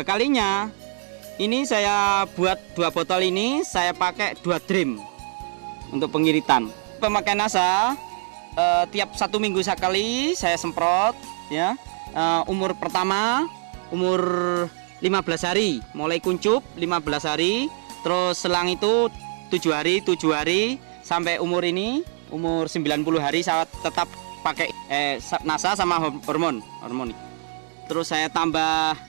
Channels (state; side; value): silent; left; 59 dB below the other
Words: ini saya buat 2 botol ini saya pakai 2 drim untuk pengiritan. Pemakaian NASA tiap 1 minggu sekali saya semprot ya. Umur pertama umur 15 hari, mulai kuncup 15 hari, terus selang itu 7 hari sampai umur ini umur 90 hari saya tetap pakai NASA sama hormon. Terus saya tambah